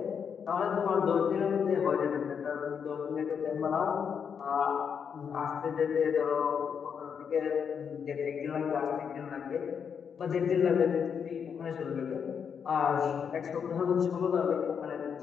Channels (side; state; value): right; quieter; 7.0 dB